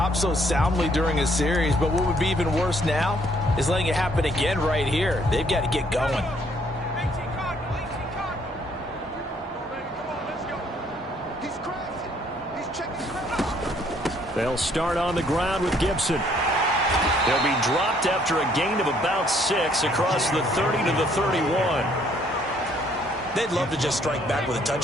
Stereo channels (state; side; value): normal; both; correlation 0.65